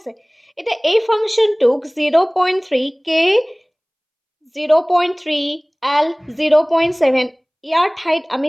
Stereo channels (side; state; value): both; identical; correlation 1.00